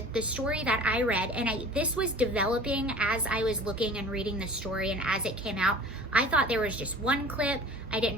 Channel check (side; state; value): both; normal; correlation 0.44